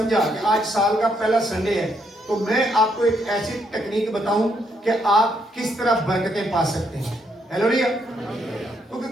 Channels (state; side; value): normal; both; correlation 0.74